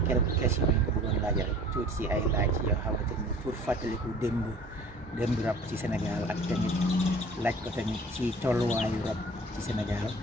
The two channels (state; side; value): normal; both; correlation 0.47